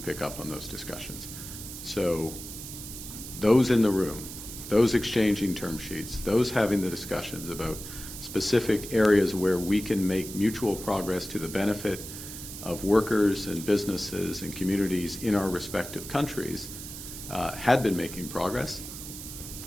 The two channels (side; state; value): right; noise; hiss, 11 dB below the sound